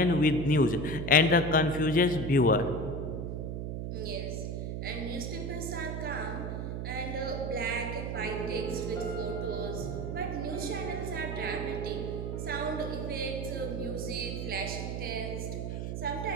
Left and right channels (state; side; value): noise; right; hum, 3 dB below the sound